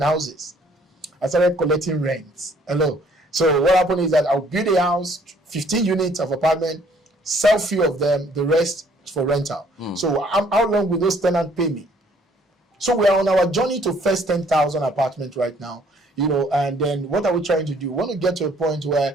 houses. I started collecting rents. Hello. So what happened is that I'll build a house, 15 units of apartment, sell few of them, the rest for rental. So how long will those tenants pay me? So we are on our journey to first 10,000 apartments right now, and then what are we trying to do? We want to get to a point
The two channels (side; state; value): both; normal; correlation 0.61